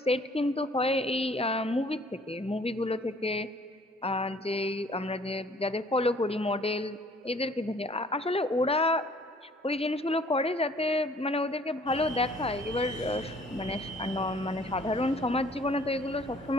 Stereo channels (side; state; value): both; normal; correlation 0.57